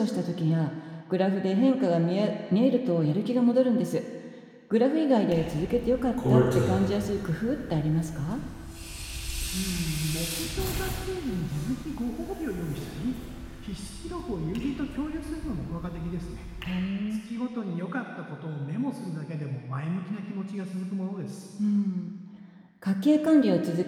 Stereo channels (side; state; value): both; identical; correlation 1.00